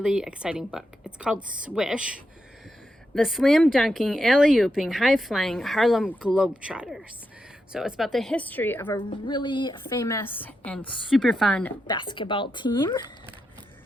exciting book. It's called Swish, the slam dunking, alley-ooping, high-flying Harlem Globetrotters. So it's about the history of a really famous and super fun basketball team.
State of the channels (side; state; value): both; normal; correlation 0.85